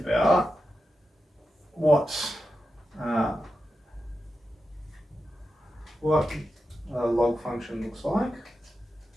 what a log function looks like.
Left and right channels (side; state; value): both; normal; correlation 0.90